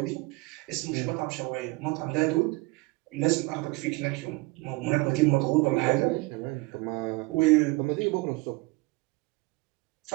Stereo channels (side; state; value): left; quieter; 24.5 dB